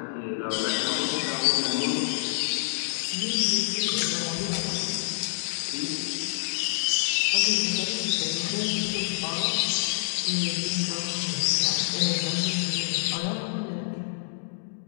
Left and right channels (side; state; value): right; silent; digital silence